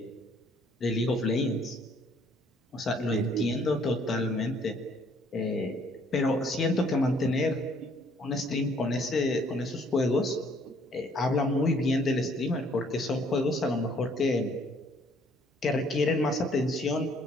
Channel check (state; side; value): normal; both; correlation 0.63